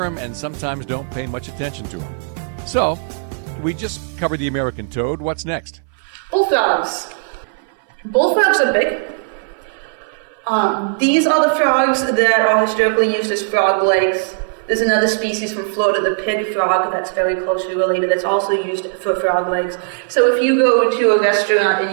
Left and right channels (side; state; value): left; silent; 61 dB below the other